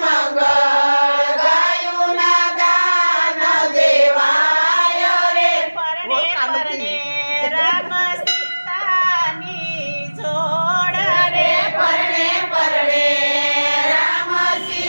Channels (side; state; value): both; inverted; correlation -1.00